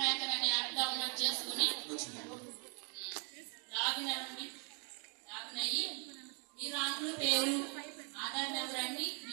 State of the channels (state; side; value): quieter; left; 38.8 dB